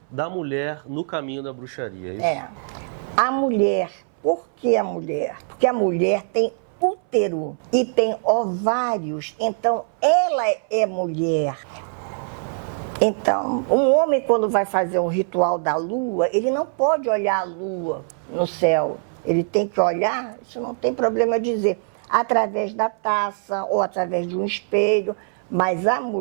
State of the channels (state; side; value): silent; left; 61 dB below the other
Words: da mulher no caminho da bruxaria, é isso? A mulher. Por que a mulher? Porque a mulher tem útero e tem ovários, então ela é mulher. Então, um homem, quando vai fazer um ritual da lua, ele não pode olhar a lua no céu. Ele tem que olhar, isso não tem problema dizer, através da taça ou através de um espelho. Mas a